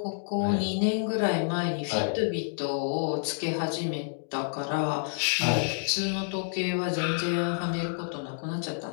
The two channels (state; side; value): silent; right; digital silence